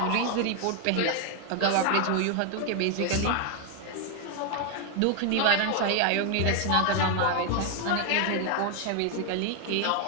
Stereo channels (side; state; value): both; different; correlation 0.00